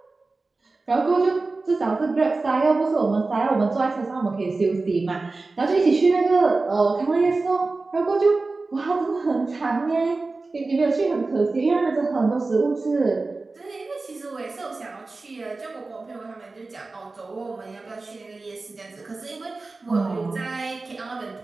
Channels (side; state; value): left; quieter; 3.6 dB